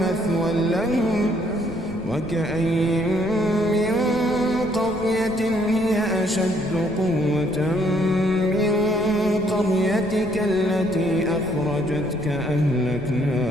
مثوى لهم وكأين من قرية هي أشد قوة من قريتك التي أخرجتك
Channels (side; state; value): left; noise; rumble, 15 dB below the sound